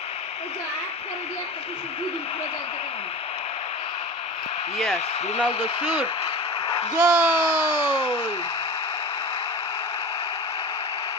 Yes, Ronaldo shoot. Goal!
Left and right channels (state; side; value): normal; both; correlation 0.32